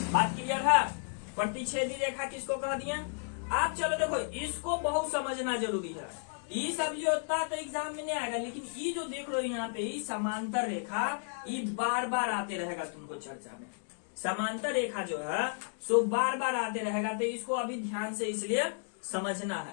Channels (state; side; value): silent; right; digital silence